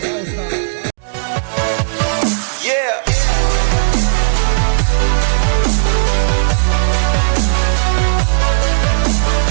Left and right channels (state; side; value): silent; left; digital silence